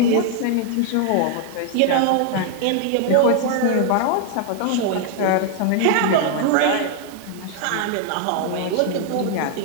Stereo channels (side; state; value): both; different; correlation 0.00